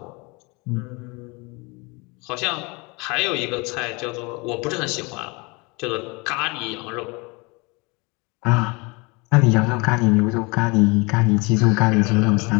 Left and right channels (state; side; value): quieter; right; 27.8 dB